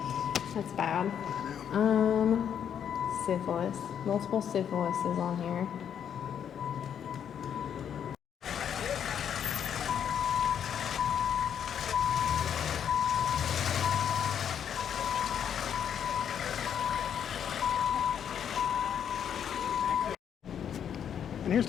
That's bad. Syphilis. Multiple syphilis is on here. And here's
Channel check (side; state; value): right; quieter; 8.6 dB